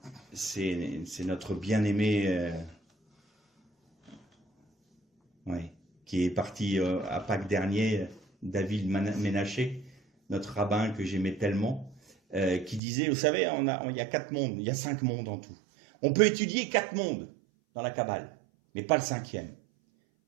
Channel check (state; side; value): drops out; left; at 12.8 s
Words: C'est notre bien-aimé qui est parti à Pâques dernier, David Ménaché, notre rabbin que j'aimais tellement, qui disait, vous savez, il y a 4 mondes, il y a 5 mondes en tout. On peut étudier 4 mondes dans la Kabbale, mais pas le 5e.